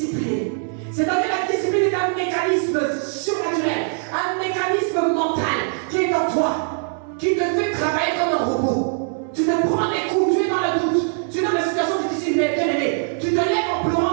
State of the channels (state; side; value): silent; left; 62 dB below the other